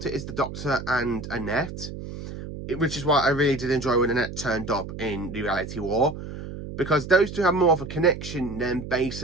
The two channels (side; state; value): right; noise; hum, 10 dB below the sound